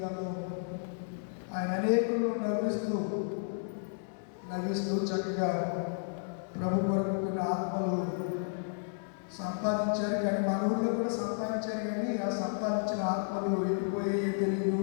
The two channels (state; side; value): silent; right; digital silence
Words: ఆయన అనేకులు నవ్విస్తూ చక్కగా ప్రభు కొరకు కొన్ని ఆత్మలు సంపాదించారు. కానీ మన ఊళ్ళో కూడా సంపాదించారు. కానీ ఆ సంపాదించిన ఆత్మలు వెళ్ళిపోయే తెలియదు,